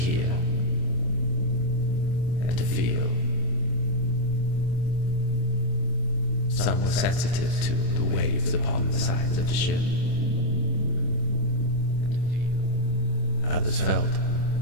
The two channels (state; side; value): late; right; 25 ms